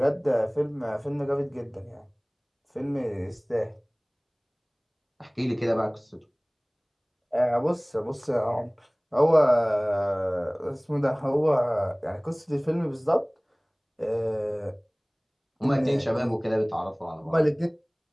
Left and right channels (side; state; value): both; identical; correlation 1.00